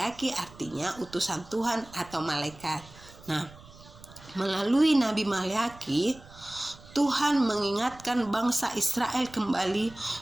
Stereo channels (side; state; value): right; noise; rumble, 21 dB below the sound